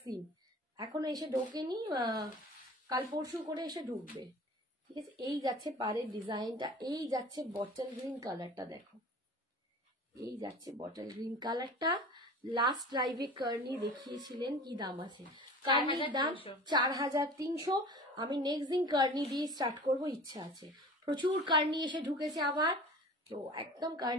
দিন, এখনো এসে ঢোকেনি, কাল পরশু করে এসে ঢুকবে, ঠিক আছে? এই যাচ্ছে পারের ডিজাইনটা, এই যাচ্ছে বটল গ্রিন কালারটা, দেখো এই যাচ্ছে বটল গ্রিন কালারটা। লাস্ট লাইভে কার্নি দেখিয়েছিলেন, কি দাম আছে? কার্নির দাম 4300। আমি নেক্সট দিন কার্নি দিয়ে স্টার্ট করব, ইচ্ছা আছে। প্রচুর কার্নি এসে ঢুকেছে আবার, তো একদম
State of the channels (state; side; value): normal; both; correlation 0.40